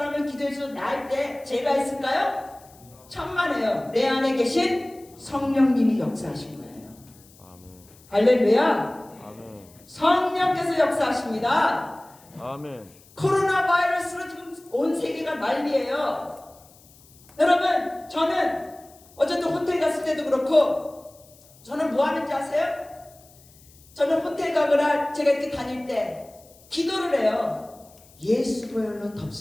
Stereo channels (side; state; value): left; noise; hiss, 26 dB below the sound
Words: 기도해서 나을 때 제가 있을까요? 천만에요. 내 안에 계신 성령님이 역사하신 거예요. 할렐루야. 아멘. 성령께서 역사하십니다. 아멘. 코로나 바이러스로 지금 온 세계가 난리예요. 여러분 저는 어쨌든 호텔 갔을 때도 그렇고 저는 뭐 하는지 아세요? 저는 호텔 가거나 제가 이렇게 다닐 때 기도를 해요. 예수 보혈로